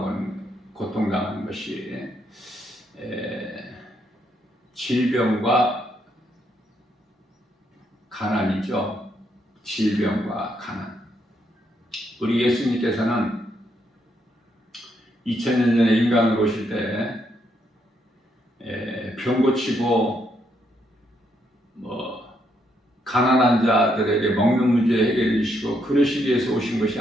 것이 질병과 가난이죠. 질병과 가난. 우리 예수님께서는 2000년 전에 인간으로 오실 때 병 고치고 가난한 자들에게 먹는 문제 해결해 주시고 그러시기 위해서 오신 것이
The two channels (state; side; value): normal; both; correlation 0.76